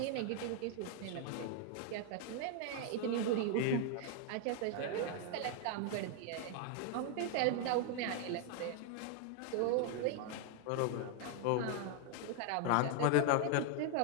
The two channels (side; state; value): both; different; correlation 0.00